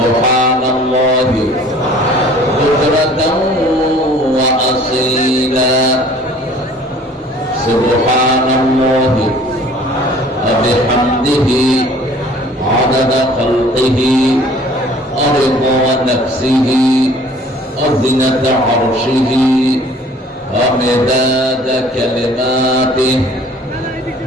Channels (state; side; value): normal; both; correlation 0.52